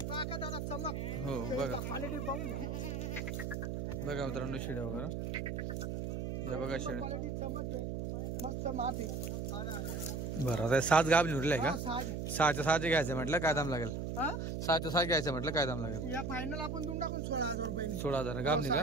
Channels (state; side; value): noise; right; hum, 3 dB below the sound